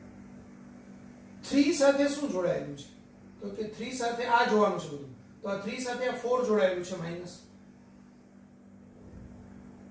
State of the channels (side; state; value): both; identical; correlation 1.00